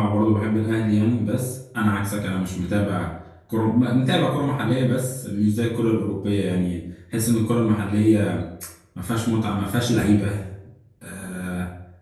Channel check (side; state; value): both; identical; correlation 1.00